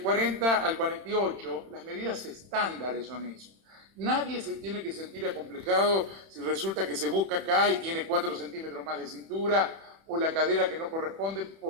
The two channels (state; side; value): late; left; 31 ms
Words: al 48, las medidas estándares son eso. Nadie se tiene que sentir acomplejado si resulta que se busca acá y tiene 4 centímetros más de cintura o la cadera que no corresponde,